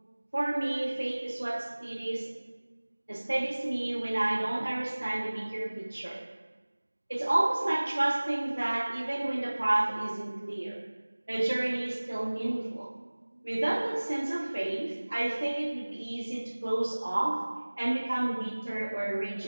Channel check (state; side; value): inverted; both; correlation -1.00